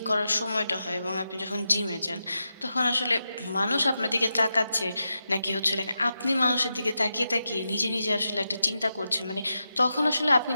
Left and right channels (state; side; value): inverted; both; correlation -0.89